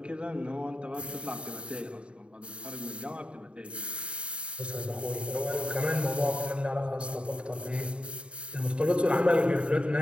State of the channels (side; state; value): left; late; 0.057 ms